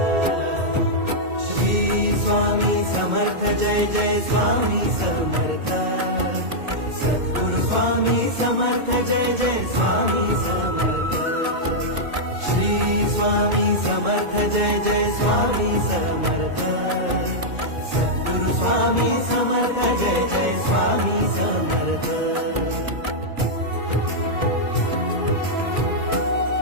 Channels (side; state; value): left; late; 2.2 ms